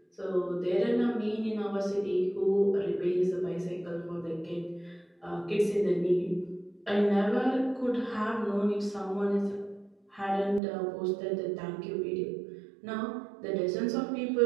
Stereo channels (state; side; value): drops out; left; at 10.6 s